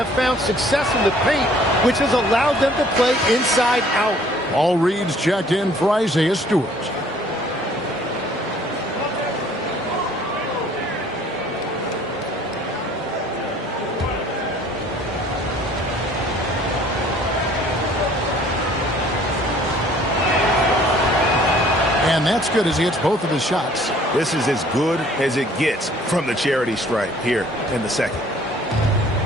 found success in the paint, which has allowed them to play inside out. All reads checked in for Isaiah Stewart. And that's good as he hits both of his shots. This is as good as it gets from the charity stripe here in the second.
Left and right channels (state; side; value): normal; both; correlation 0.56